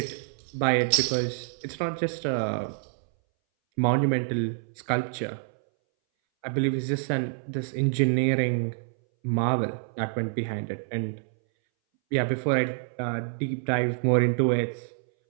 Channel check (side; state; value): left; silent; 60 dB below the other